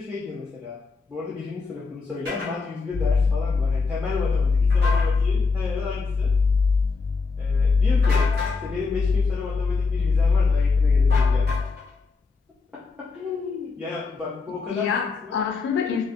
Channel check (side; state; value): right; quieter; 4.4 dB